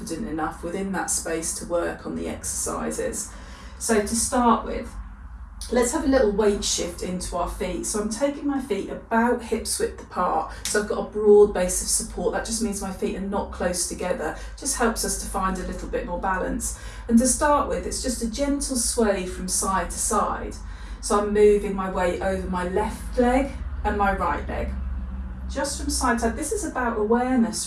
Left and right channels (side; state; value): both; identical; correlation 1.00